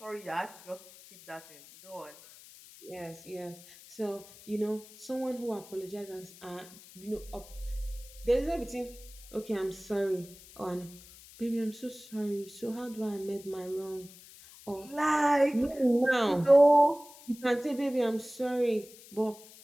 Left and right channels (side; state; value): left; noise; hiss, 20 dB below the sound